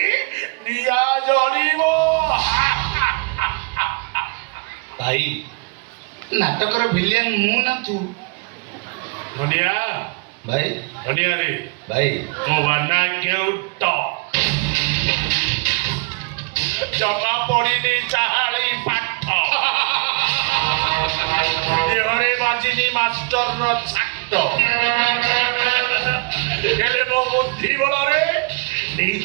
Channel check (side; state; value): left; quieter; 32.4 dB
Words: নিয়া জ্বলিব। ভাই নাটকর ভিলিয়ান মু না তু? ধনিয়া ভাই ধনিয়া রে ভাই ମୋ ବାନା କେଉଟ ଜମା ପଡ଼ିନି ଚାହାଳି ପାଠ ଦେହରେ ବାଜିନି ମାଷ୍ଟରର ଛାଟ ହେଲେ ମୋ ବୁଦ୍ଧି ବଳରେ